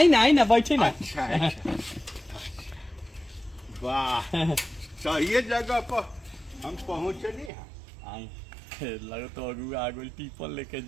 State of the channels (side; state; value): left; drops out; at 7.5 s